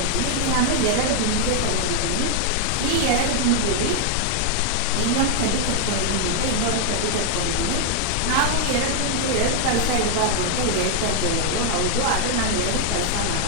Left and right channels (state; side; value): different; both; correlation 0.00